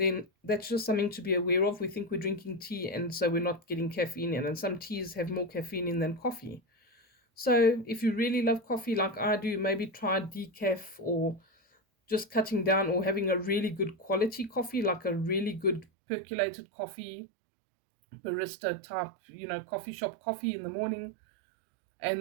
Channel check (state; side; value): drops out; left; at 15.9 s